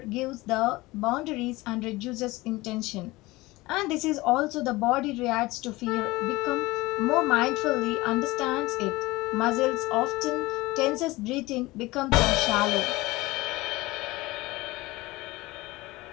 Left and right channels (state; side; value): quieter; right; 20.6 dB